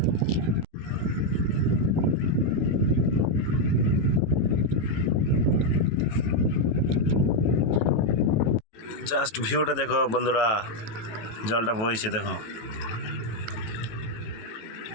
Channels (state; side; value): late; right; 18 ms